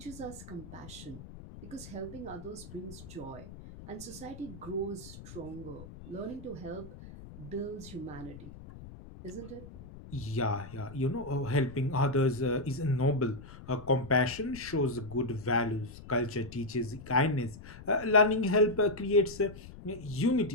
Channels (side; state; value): left; noise; rumble, 15 dB below the sound